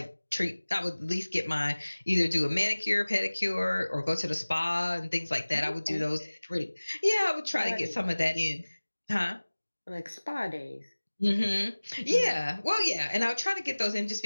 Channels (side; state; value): both; inverted; correlation -1.00